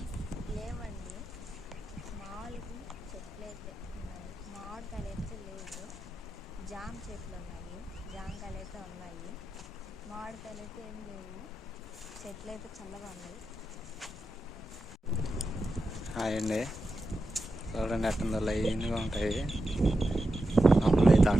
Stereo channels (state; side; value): normal; both; correlation 0.89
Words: లేవండి, మామూలుగా చెట్లు అయితే ఉన్నాయి. మామిడికాయలు అయితే లేవు. జామ చెట్లు ఉన్నాయి, జామకాయలు అయితే ఉన్నాయి. మామిడికాయలు అయితే ఏం లేవు. చెట్లు అయితే చల్లగా ఉన్నాయి. హాయ్ అండి, చూడండి ఎట్టుందో లైన్గా ఉంటాయి. అప్పుడు అయితే